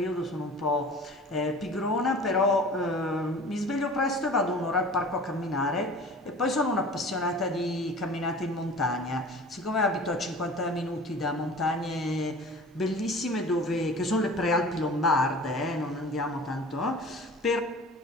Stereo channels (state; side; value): normal; both; correlation 0.41